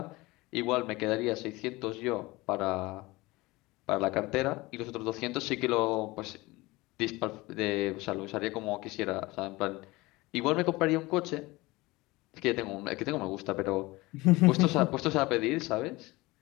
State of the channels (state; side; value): quieter; right; 21.5 dB